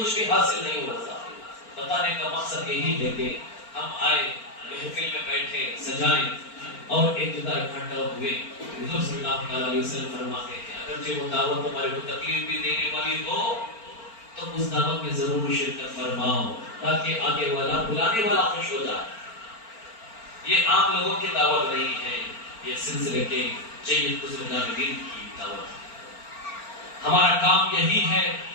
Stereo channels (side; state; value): right; late; 4.4 ms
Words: بھی حاصل نہیں ہوتا. بتانے کا مقصد یہی ہے کہ ہم آئے محفل میں بیٹھے سجائیں اور ایک جگہ اکٹھا ہوئے. حضور صلی اللہ علیہ وسلم فرماتے ہیں اگرچہ وہ دعوت ہمارے کو تکلیف بھی دینے والی ہو تو اس دعوت میں ضرور شرکت فرماؤ تاکہ آگے والا بلانے والا خوش ہو جائے. یہ عام لوگوں کی دعوت نہیں ہے، یہ سلسلے کے جید بزرگان دین کی دعوت ہے. ہمارا کام یہی ہے